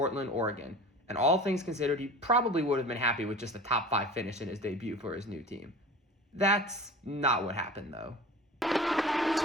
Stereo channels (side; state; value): both; normal; correlation 0.38